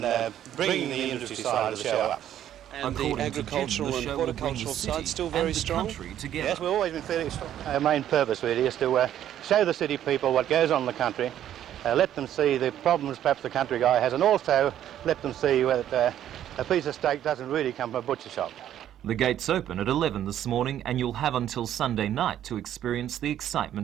bringing the industry side of the show up. And the agricultural and horticultural side still very strong? Yes, we've always been fairly strong. Our main purpose really is to show the city people what goes on in the country, let them see the problems perhaps the country guy has, and also let them see that a piece of steak doesn't really come from a butcher shop. The gates open at 11 this morning, and you'll have until Sunday night to experience the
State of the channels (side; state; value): left; quieter; 11.2 dB